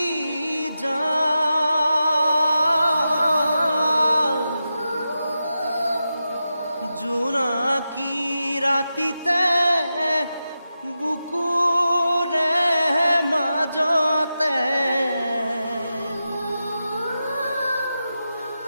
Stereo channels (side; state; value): both; inverted; correlation -0.90